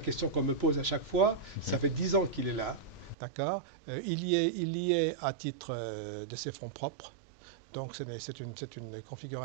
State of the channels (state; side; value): drops out; left; at 3.2 s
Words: qu'on me pose à chaque fois. Ça fait 10 ans qu'il est là, d'accord. Il y est à titre de ses fonds propres. Donc c'est une